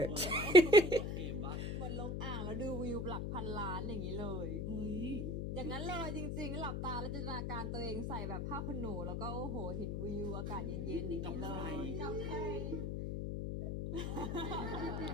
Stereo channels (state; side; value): noise; left; hum, 1 dB below the sound